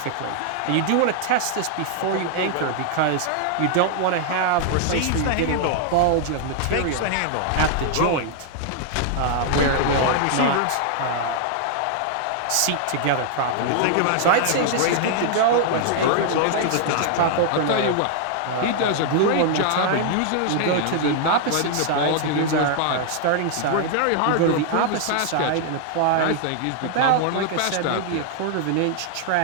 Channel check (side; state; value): both; different; correlation 0.00